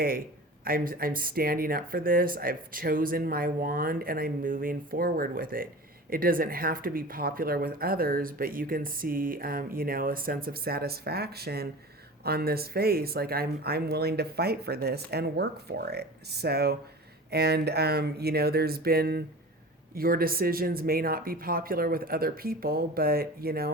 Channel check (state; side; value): normal; both; correlation 0.36